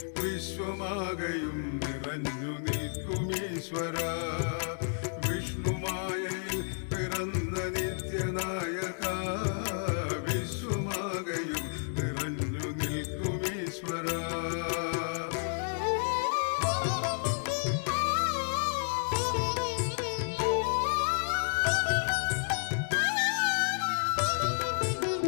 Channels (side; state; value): right; silent; digital silence